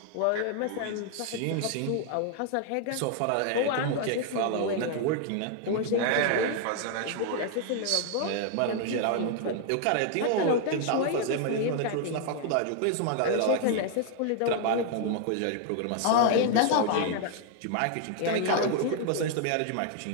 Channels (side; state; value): both; different; correlation 0.00